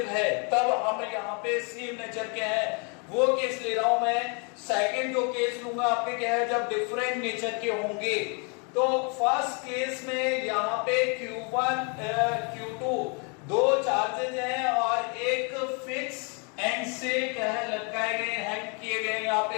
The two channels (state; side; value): quieter; right; 35.4 dB